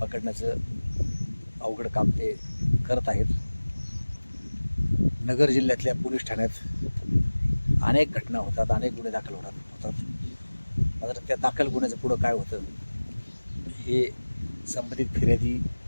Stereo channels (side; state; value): both; inverted; correlation -1.00